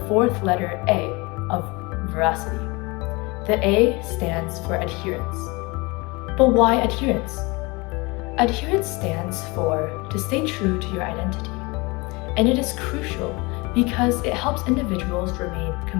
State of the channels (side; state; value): right; quieter; 25.8 dB